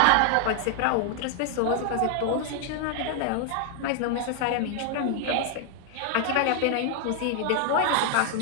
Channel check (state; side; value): different; both; correlation 0.00